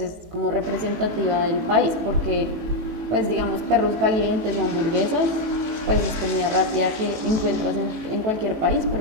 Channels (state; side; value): late; left; 18 ms